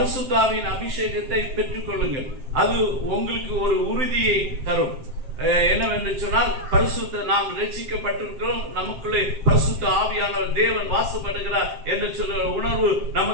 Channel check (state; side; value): late; left; 7.6 ms